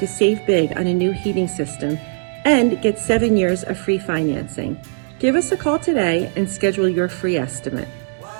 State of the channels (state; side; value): silent; left; 58 dB below the other